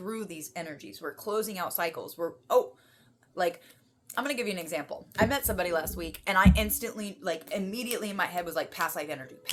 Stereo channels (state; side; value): identical; both; correlation 1.00